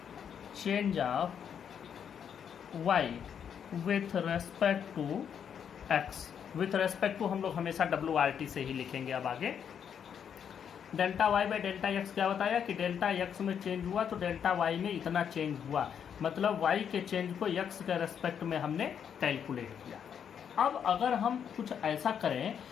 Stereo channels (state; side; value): quieter; right; 8.0 dB